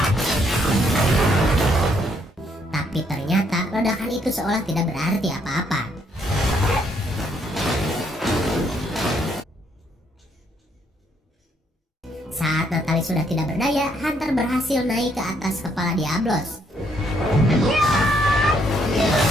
Tapi ternyata ledakan itu seolah tidak berarti apa-apa. Saat Natalie sudah tidak berdaya, hunter berhasil naik ke atas kepala Diablos.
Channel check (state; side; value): normal; both; correlation 0.71